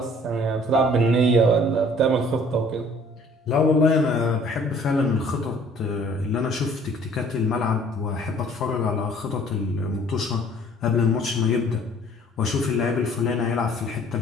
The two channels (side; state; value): both; normal; correlation 0.54